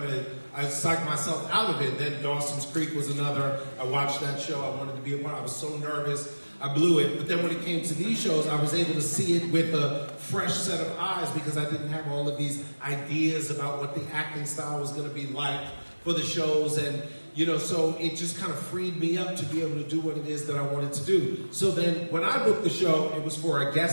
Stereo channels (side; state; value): both; inverted; correlation -1.00